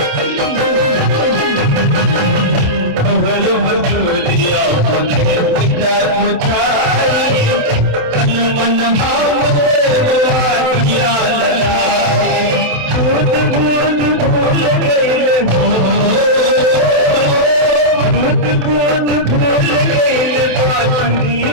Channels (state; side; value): late; left; 27 ms